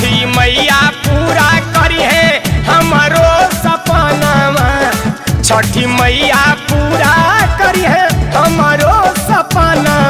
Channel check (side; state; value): both; identical; correlation 1.00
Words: मैया पूरा करी है हमारो सपनावा, छठी मैया पूरा करी है हमारो